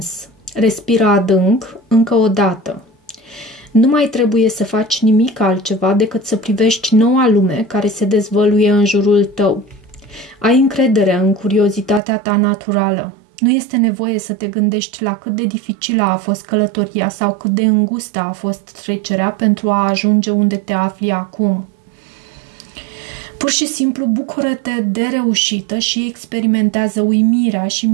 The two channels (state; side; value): drops out; left; at 12.0 s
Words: Respira adânc, încă o dată. Nu mai trebuie să faci nimic altceva decât să privești noua lume care se dezvăluie în jurul tău. Ai încredere în curiozitatea ta naturală. Nu este nevoie să te gândești la cât de dificilă a fost călătoria sau cât de îngustă a fost trecerea pentru a ajunge unde te afli acum. Pur și simplu bucură-te de reușită și experimentează uimirea și